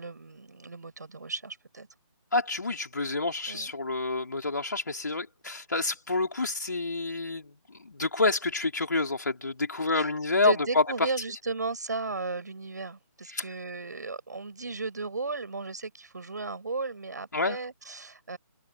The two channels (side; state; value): both; inverted; correlation -0.49